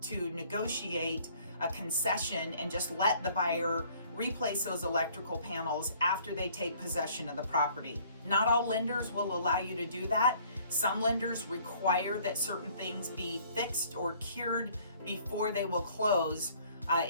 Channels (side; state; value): both; inverted; correlation -0.58